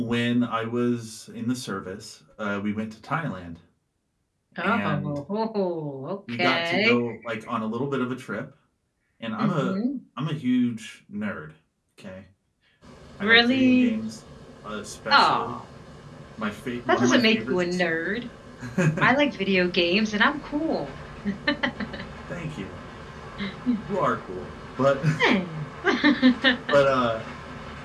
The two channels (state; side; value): identical; both; correlation 1.00